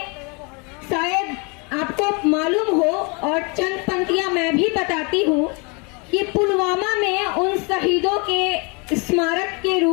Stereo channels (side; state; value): right; quieter; 31.5 dB